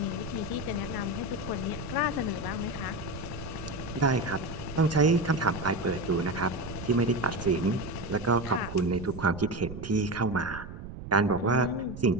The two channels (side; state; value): right; noise; rumble, 11 dB below the sound